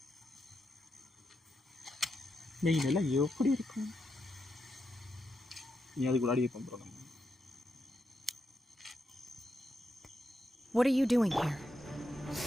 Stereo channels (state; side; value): normal; both; correlation 0.84